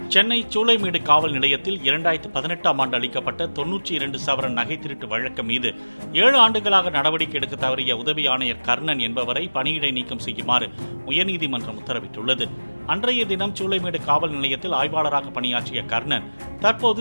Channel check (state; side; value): inverted; both; correlation -1.00